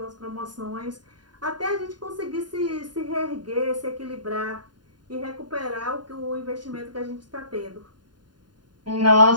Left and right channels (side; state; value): left; late; 0.70 ms